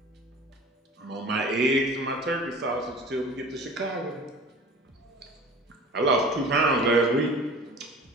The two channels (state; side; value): normal; both; correlation 0.42